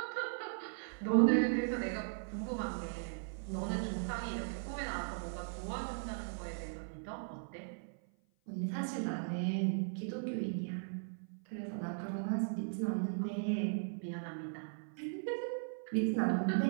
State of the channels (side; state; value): left; silent; 52 dB below the other